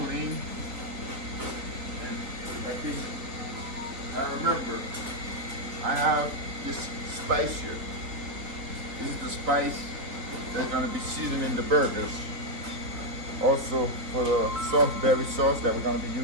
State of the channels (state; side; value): late; left; 4.1 ms